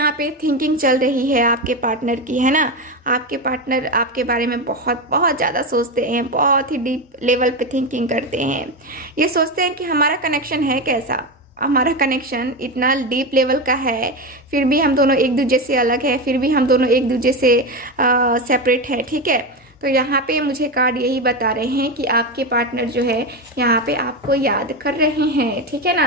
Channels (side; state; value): both; normal; correlation 0.16